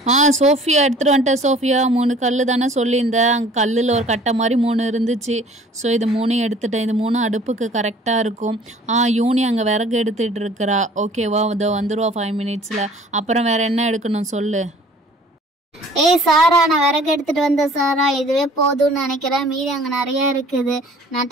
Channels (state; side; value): normal; both; correlation 0.51